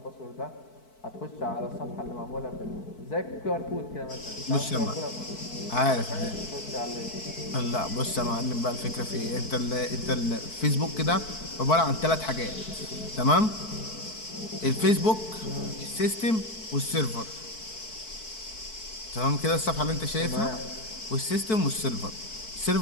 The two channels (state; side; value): late; right; 4.6 ms